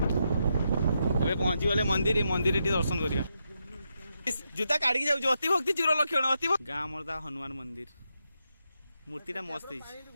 ए पहुंची गले मंदिर मंदिर दर्शन करिया जूता काढ़ी जाऊ अति भक्ति चूर लक्षण अति गाँ मरदा हनुमान मंदिर मूर्तिटा मस्त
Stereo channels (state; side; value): inverted; both; correlation -0.83